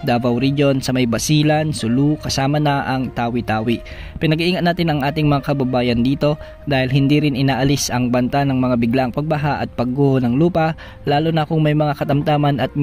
Davao Region, sa may Basilan, Sulu, kasama na ang Tawi-Tawi. Pinag-iingat natin ang ating mga kababayan dito dahil hindi rin inaalis ang banta ng mga biglaang pagbaha at pagguho ng lupa, lalo na kung may mga katamtaman at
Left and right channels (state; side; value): identical; both; correlation 1.00